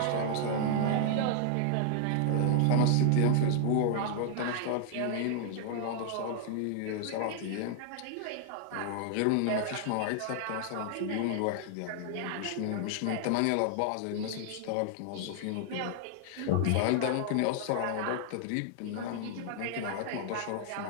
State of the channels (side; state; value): both; different; correlation -0.01